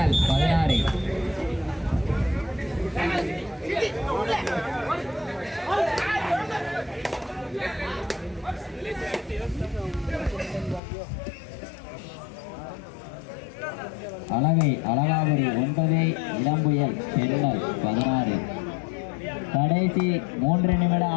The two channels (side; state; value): right; drops out; at 10.8 s